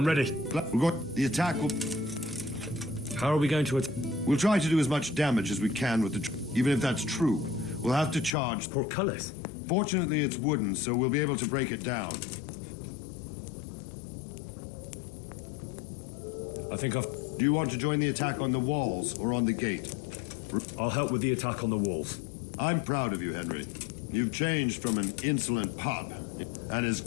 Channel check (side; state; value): right; drops out; at 8.3 s